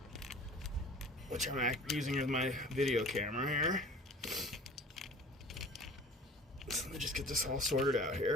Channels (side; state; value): both; normal; correlation 0.44